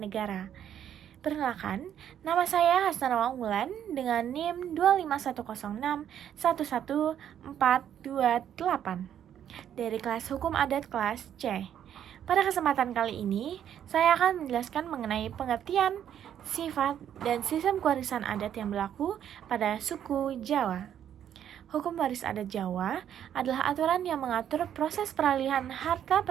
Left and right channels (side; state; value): left; quieter; 9.9 dB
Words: Perkenalkan, nama saya Hasnanawa Unggulan dengan NIM 25106-11428 dari kelas Hukum Adat kelas C. Pada kesempatan kali ini, saya akan menjelaskan mengenai pengertian, sifat, dan sistem kewarisan adat yang berlaku pada suku Jawa. Hukum waris adat Jawa adalah aturan yang mengatur proses peralihan harta